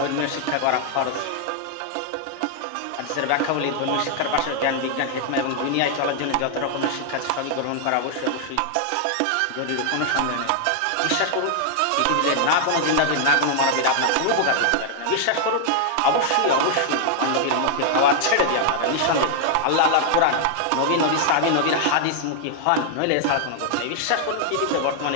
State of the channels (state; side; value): different; both; correlation 0.00